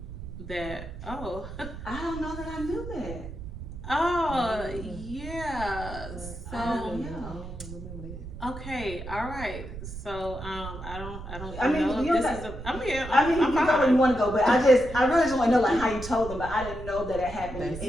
that. Oh, I don't know that I knew that. oh yeah. So Yeah. okay, all right. So I don't I mean, know you if know this is that. a. I mean, I mean, I'm you go where fine. you want to go, but I really just want to know like how you told them, but I didn't know that it happened They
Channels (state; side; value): noise; right; rumble, 10 dB below the sound